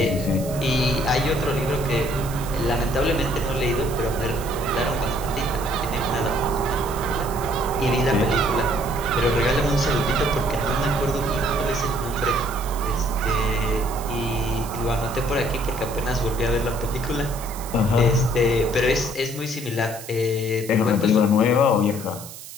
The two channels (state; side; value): noise; right; hiss, 14 dB below the sound